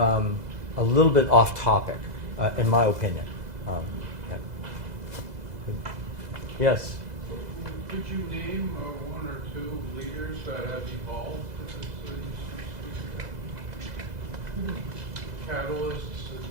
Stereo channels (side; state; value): left; late; 2.0 ms